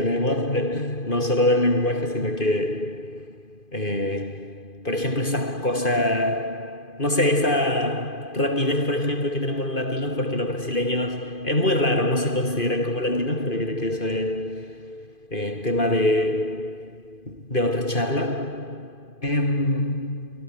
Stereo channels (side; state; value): right; late; 2.5 ms